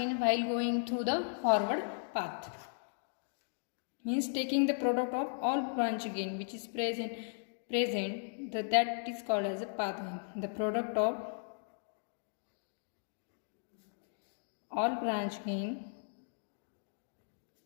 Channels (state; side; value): silent; right; digital silence